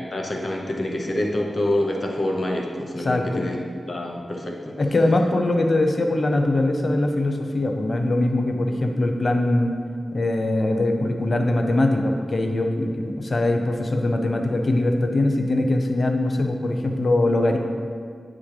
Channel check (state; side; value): normal; both; correlation 0.95